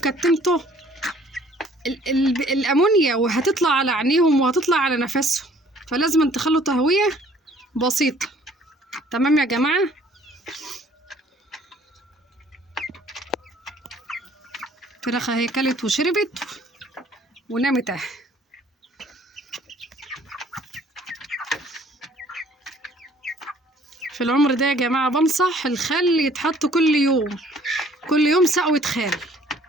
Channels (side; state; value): both; normal; correlation 0.57